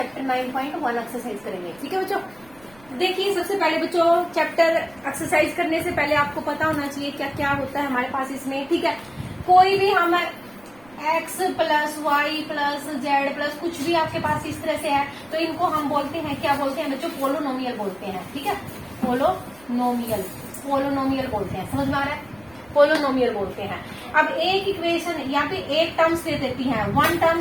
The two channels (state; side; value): noise; right; rumble, 27 dB below the sound